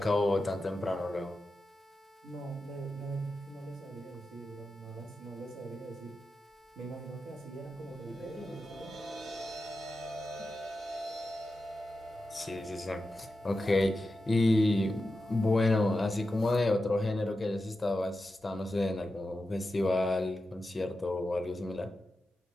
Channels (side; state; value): both; normal; correlation 0.91